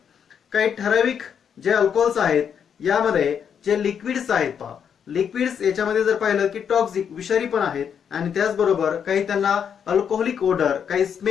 काही ठराविक जे alcohols आहेत यामध्ये जे liquids आहेत पहा, liquids याच्यामध्ये जर पाहिलं की टॉक्सिक विषारी पण आहेत आणि त्याचबरोबर काही त्यांना अल्कोहोलिक ओडर, काही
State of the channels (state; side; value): quieter; right; 7.7 dB